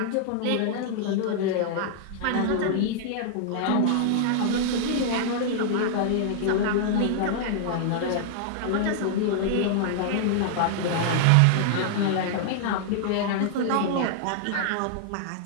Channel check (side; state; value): both; different; correlation -0.01